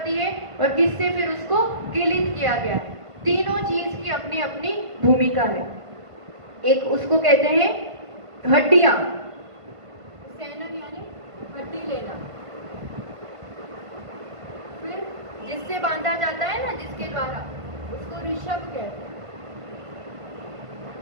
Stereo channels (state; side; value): late; left; 1.5 ms